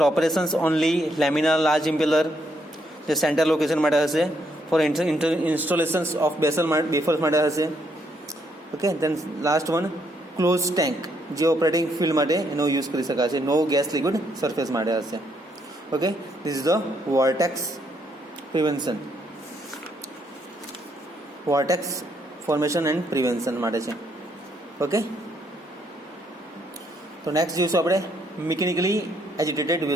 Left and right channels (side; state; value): both; normal; correlation 0.73